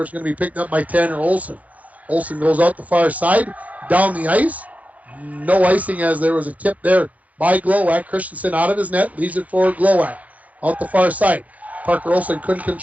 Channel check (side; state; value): left; late; 0.073 ms